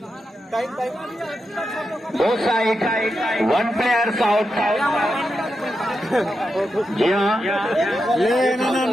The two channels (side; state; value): both; normal; correlation 0.87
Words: दो साइड 1 प्लेयर्स आउट। जी हाँ